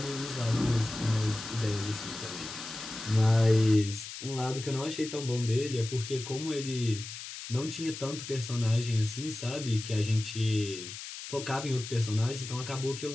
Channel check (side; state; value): left; noise; hiss, 10 dB below the sound